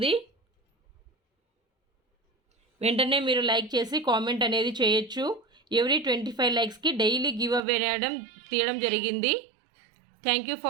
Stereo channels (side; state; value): left; drops out; at 7.6 s